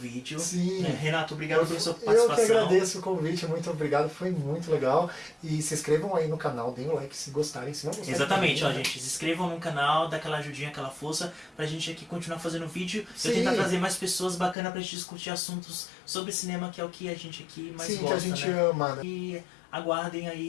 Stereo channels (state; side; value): drops out; right; at 14.6 s